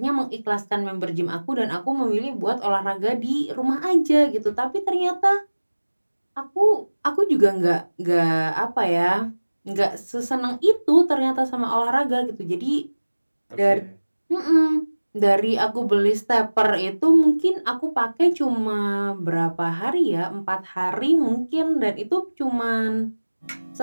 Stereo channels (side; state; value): both; inverted; correlation -1.00